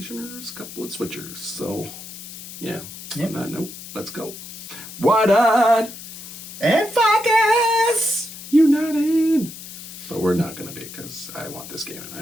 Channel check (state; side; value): noise; left; hiss, 13 dB below the sound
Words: a couple of Switchers. So, yeah. Yep. On that note, let's go. Widied And Pfarcus! United. But we're not going to be, because I want this game, and I